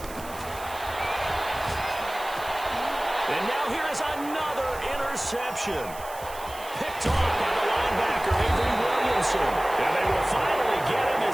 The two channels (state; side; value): noise; right; hiss, 16 dB below the sound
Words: And now here is another interception. Picked off by the linebacker, Avery Williamson. And they will finally get him